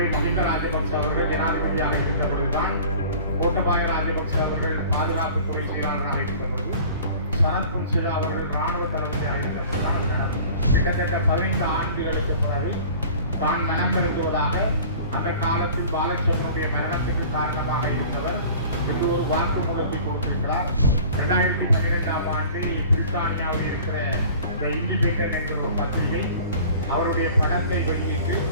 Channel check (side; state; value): both; inverted; correlation -0.44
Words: மஹிந்த ராஜபக்ச அவர்கள் ஜனாதிபதியாக இருந்தபொழுதுதான் கோட்டபாய ராஜபக்ச அவர்கள் பாதுகாப்புத்துறை செயலாளராக இருந்தபொழுது சரத் பொன்சேகா அவர்கள் இராணுவ தளபதியாக இருந்தபொழுதுதான் அது நடந்தது. கிட்டத்தட்ட 15 ஆண்டுகளுக்கு பிறகு தான் மனம் விரும்புவதாக அந்த காலத்தில் பாலச்சந்திரனுடைய மரணத்திற்கு காரணமாக இருந்தவர் இது ஒரு வாக்குமூலத்தை கொடுத்திருக்கிறார். 2012ஆம் ஆண்டு பிரித்தானியாவில் இருக்கிற இண்டிபெண்டன்ட் என்ற ஒரு பத்திரிகை அவருடைய படத்தை வெளியிட்டு